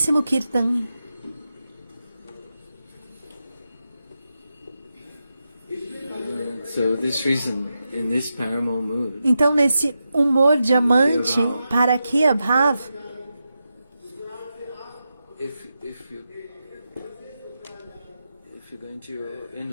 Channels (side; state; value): both; inverted; correlation -0.89